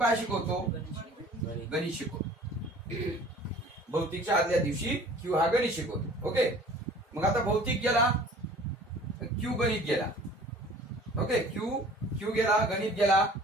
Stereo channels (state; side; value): normal; both; correlation 0.48